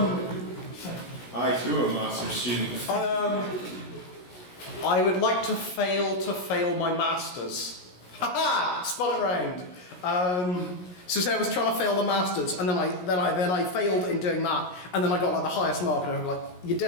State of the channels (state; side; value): late; right; 17 ms